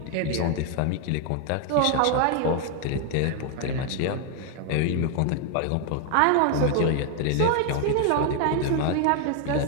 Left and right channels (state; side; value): different; both; correlation 0.00